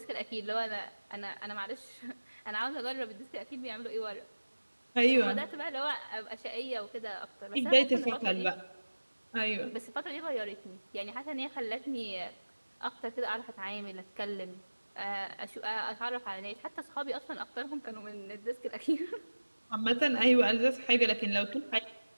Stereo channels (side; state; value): both; inverted; correlation -1.00